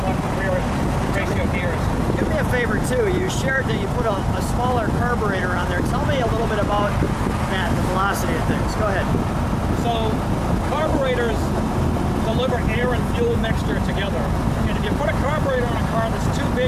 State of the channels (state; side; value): identical; both; correlation 1.00